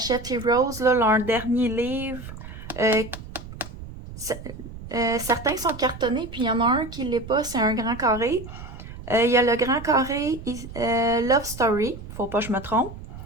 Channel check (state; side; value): noise; right; rumble, 13 dB below the sound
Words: Heroes, là, leur dernier livre. Certains sont cartonnés, puis il y en a un qui ne l'est pas, c'est un grand carré. Il y a le grand carré Love Story, faut pas que je me trompe.